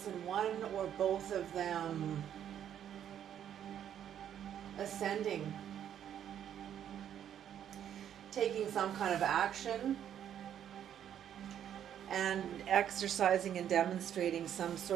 in one or both of them ascending, taking some kind of action and exercising and demonstrating some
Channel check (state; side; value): quieter; left; 9.8 dB